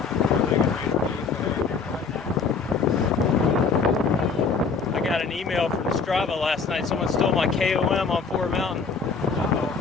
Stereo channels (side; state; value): right; quieter; 5.0 dB